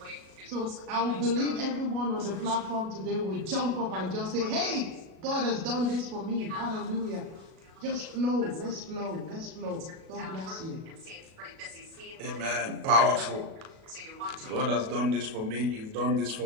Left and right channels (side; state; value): left; late; 37 ms